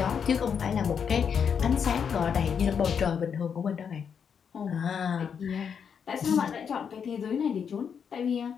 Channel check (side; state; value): right; quieter; 7.1 dB